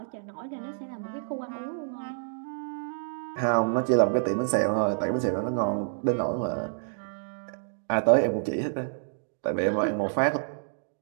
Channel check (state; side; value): silent; left; digital silence